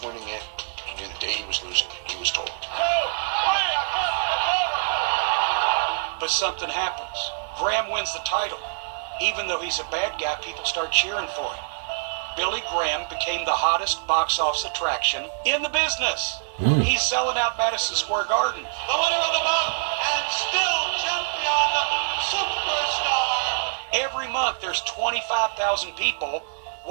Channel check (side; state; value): left; silent; 62 dB below the other